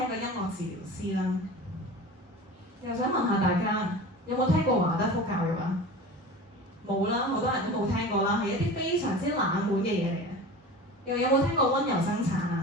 一個音樂治療師啦。又想問下大家，有冇聽過華德福教育啊？冇啦，好多人都冇聽過啦，係一啲非常之冷門嘅嘢嚟嘅。又有冇聽過溫柔生產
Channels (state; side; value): normal; both; correlation 0.35